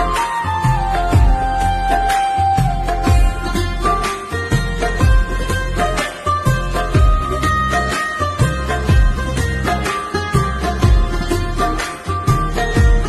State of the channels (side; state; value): both; identical; correlation 1.00